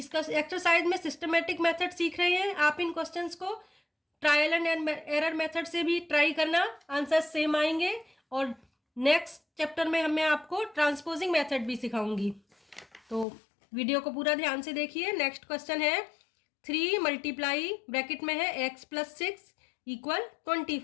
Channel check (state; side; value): drops out; right; at 13.2 s